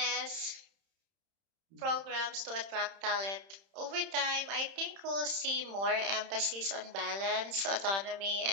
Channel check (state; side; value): late; left; 31 ms